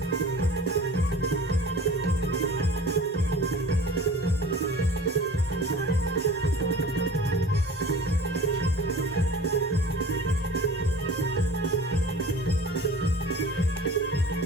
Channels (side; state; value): both; normal; correlation 0.42